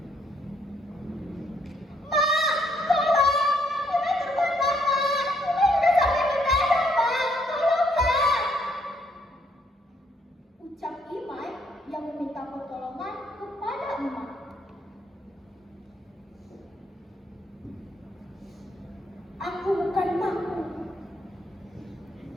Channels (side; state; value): both; normal; correlation 0.70